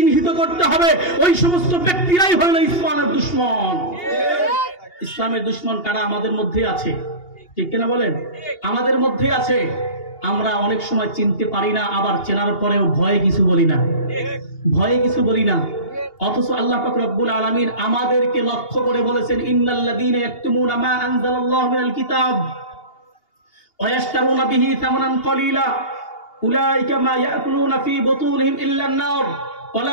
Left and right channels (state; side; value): late; right; 2.8 ms